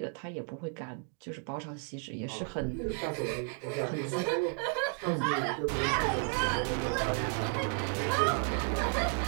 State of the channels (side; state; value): left; quieter; 38.7 dB